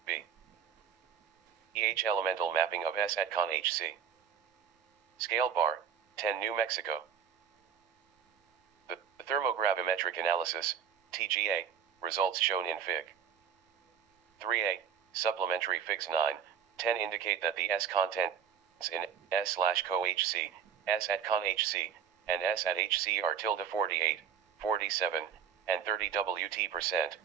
B. EH elemental mapping of S at con HC. Scale bar, 10 New Mexico. The thermogravimetric analysis, TGA, results shown in Fig 3A, supplementary Figs 9, 10 indicate that the S contents in S/CoHC, S at con HC, and S at HC are 48, 47, and 30 Wt%,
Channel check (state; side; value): quieter; left; 8.0 dB